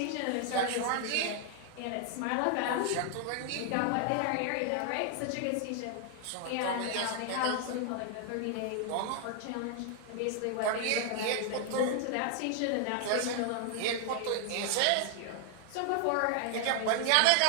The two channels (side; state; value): both; different; correlation 0.00